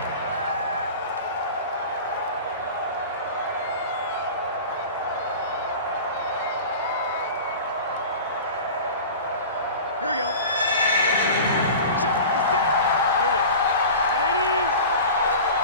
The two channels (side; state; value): both; inverted; correlation -0.35